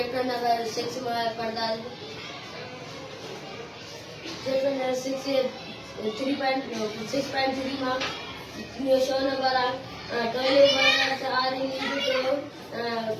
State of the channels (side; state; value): both; identical; correlation 1.00